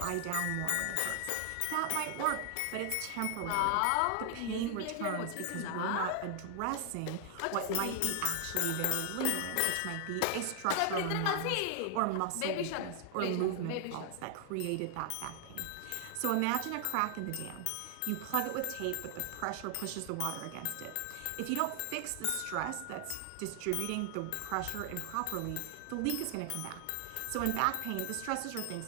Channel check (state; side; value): different; both; correlation 0.00